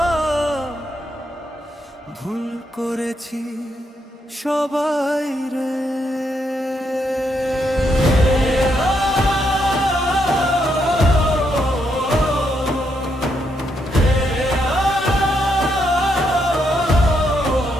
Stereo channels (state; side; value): normal; both; correlation 0.78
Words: ভুল করেছি সবাই রে।